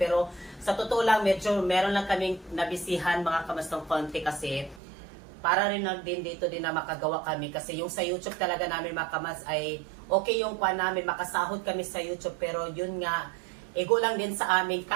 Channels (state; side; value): drops out; left; at 4.8 s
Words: sa totoo lang, medyo meron lang kaming nabisihan mga kamas ng konti kasi para rin lang din dito din na makagawa kami kasi yung sa YouTube talaga namin mga kamas ay okay yung kuha namin, makasahod kami sa YouTube pero yun nga, ego lang din sa aming